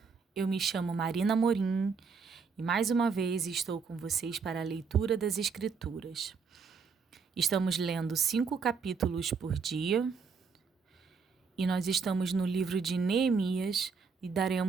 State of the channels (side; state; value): left; quieter; 5.3 dB